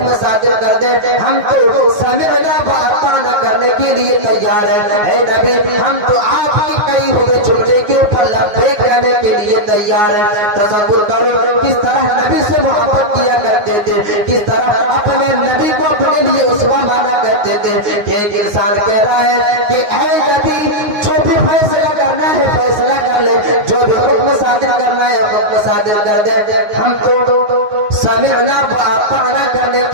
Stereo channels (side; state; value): left; late; 9.5 ms